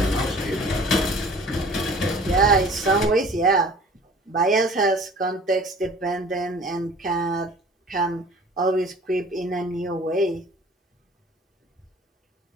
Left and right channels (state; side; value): normal; both; correlation 0.48